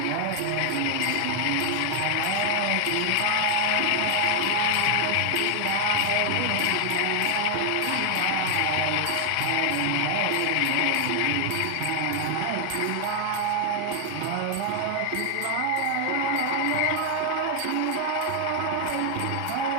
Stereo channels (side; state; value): both; different; correlation 0.00